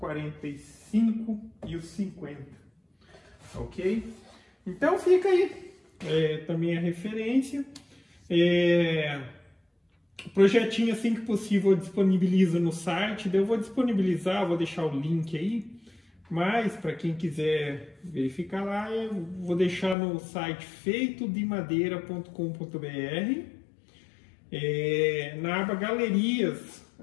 e o 50, ok? Então fica aí também a referência. O projetinho, assim que possível, eu disponibilizo no site. Eu vou disponibilizar, vou deixar o link aí. Mas, para quem quiser verificar lá, eu vou deixar no site feitodemadeira.com.br. Na aba Galerias,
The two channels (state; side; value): drops out; right; at 20.0 s